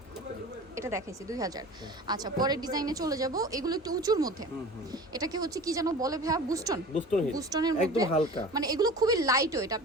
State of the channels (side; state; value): both; normal; correlation 0.38